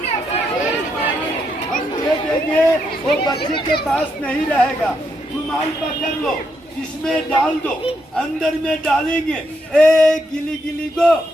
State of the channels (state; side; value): normal; both; correlation 0.79